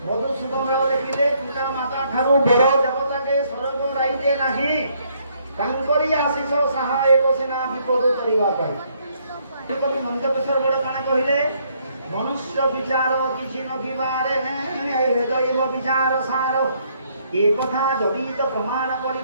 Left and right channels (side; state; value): both; inverted; correlation -0.69